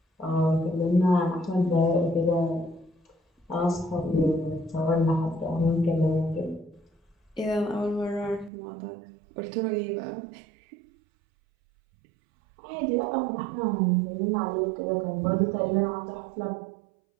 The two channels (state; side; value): drops out; left; at 8.5 s